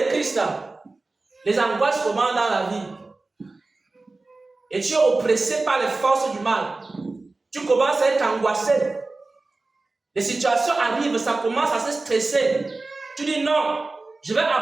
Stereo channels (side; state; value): left; quieter; 3.4 dB